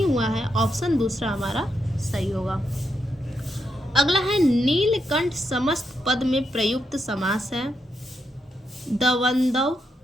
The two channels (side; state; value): both; normal; correlation 0.81